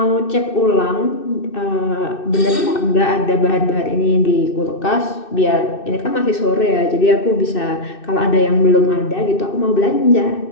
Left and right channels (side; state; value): right; late; 2.6 ms